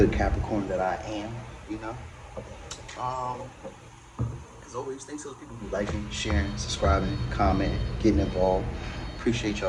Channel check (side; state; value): both; identical; correlation 1.00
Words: Capricorn that I am. You know. As always, thanks to those people who liking, sharing, subscribing, commenting, getting involved. Appreciate